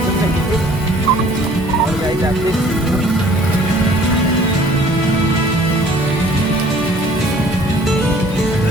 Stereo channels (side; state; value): both; normal; correlation 0.54